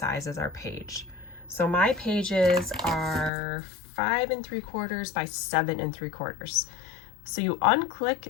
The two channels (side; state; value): right; drops out; at 3.3 s